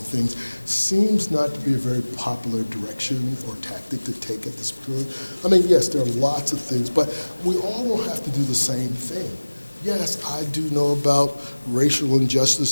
things, seems not to be a very popular direction or tactic to take at this point. I mean, yes, there are lots of things, but we all don't have to do the same thing. Yes, I do know about racial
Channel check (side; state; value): both; inverted; correlation -1.00